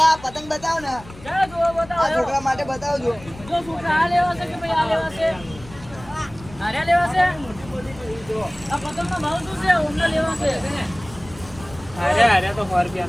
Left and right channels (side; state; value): left; noise; rumble, 18 dB below the sound